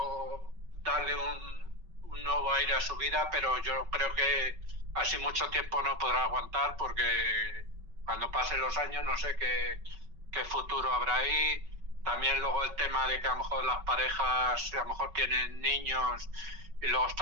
darle un nuevo aire a su vida, pero yo creo que así mucho tiempo no podrá aguantar, porque cuando pasen los años no sé qué futuro habrá ahí. También luego el tema de que a lo mejor las parejas a lo mejor tienen niños, y luego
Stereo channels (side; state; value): left; late; 5.3 ms